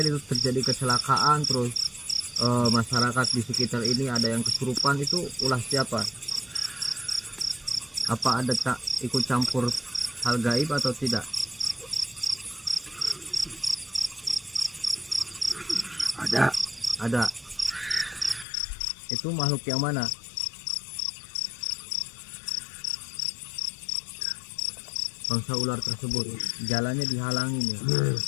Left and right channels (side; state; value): right; drops out; at 18.4 s